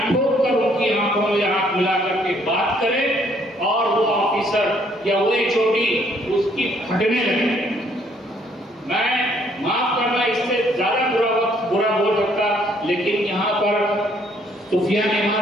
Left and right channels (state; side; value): normal; both; correlation 0.66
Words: ٹھوک کر ان کی آنکھوں میں ہاتھ ملا کر کے بات کرے اور وہ آفیسر یا وہ HOD اس کی پھٹنے لگے. میں معاف کرنا اس سے زیادہ برا بول سکتا، لیکن یہاں پر سفیان